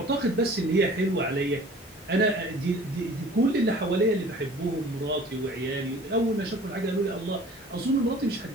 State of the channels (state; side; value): normal; both; correlation 0.48